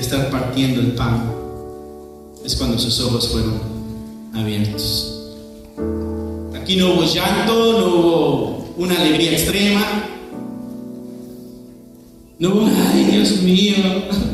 partiendo el pan, es cuando sus ojos fueron abiertos. Aquí no hubo llanto, no hubo una alegría extrema, no hubo, ay Dios mío,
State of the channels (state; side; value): identical; both; correlation 1.00